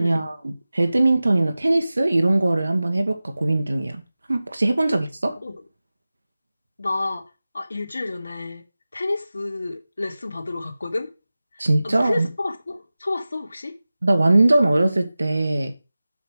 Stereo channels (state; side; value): inverted; both; correlation -0.96